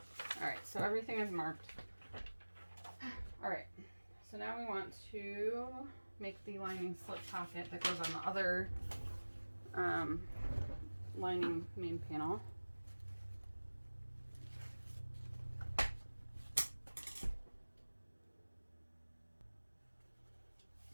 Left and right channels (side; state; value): both; inverted; correlation -1.00